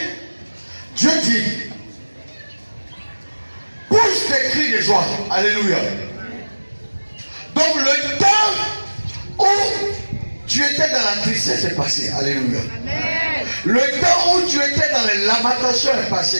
Dieu dit, pousse des cris de joie. Alléluia. Donc le temps où tu étais dans la tristesse est passé. Alléluia. Amen. Le temps où tu étais dans les lamentations est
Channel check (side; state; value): both; inverted; correlation -1.00